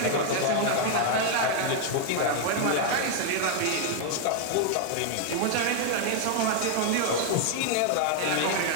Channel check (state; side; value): different; both; correlation 0.00